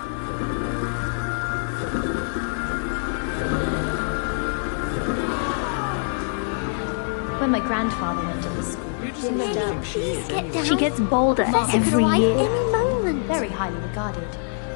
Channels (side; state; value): right; silent; digital silence